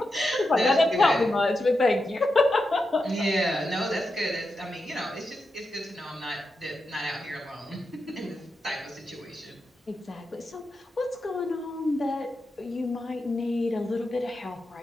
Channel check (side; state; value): both; normal; correlation 0.88